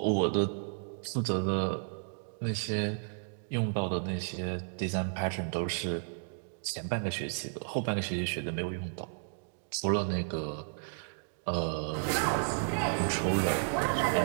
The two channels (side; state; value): left; silent; digital silence